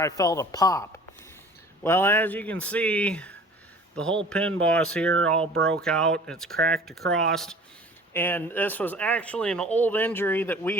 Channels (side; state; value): both; normal; correlation 0.46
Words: a pop. Well, as you can see, the whole pin boss here all broke out. It's cracked across. And this was actually an old injury that